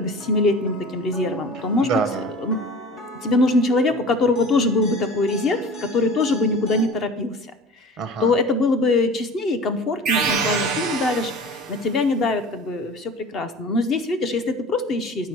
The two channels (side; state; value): both; normal; correlation 0.40